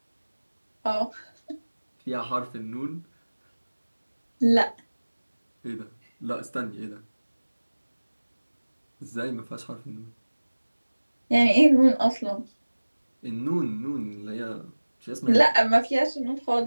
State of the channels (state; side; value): inverted; both; correlation -1.00